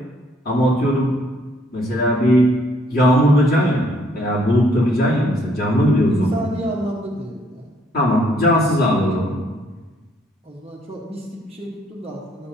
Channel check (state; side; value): normal; both; correlation 0.67